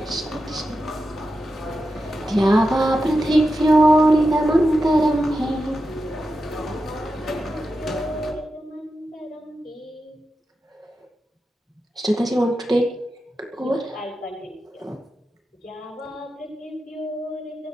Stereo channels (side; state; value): both; normal; correlation 0.90